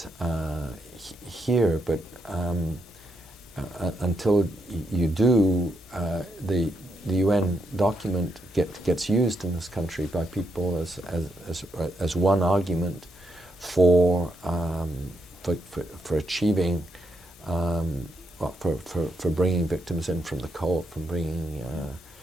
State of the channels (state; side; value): normal; both; correlation 0.80